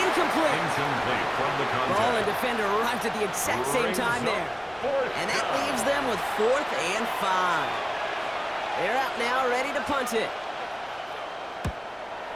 Incomplete from the contact. Ball and defender arrived at the exact same time there. And that leaves them with 4th and 5. They're out now, ready to punt it.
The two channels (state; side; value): identical; both; correlation 1.00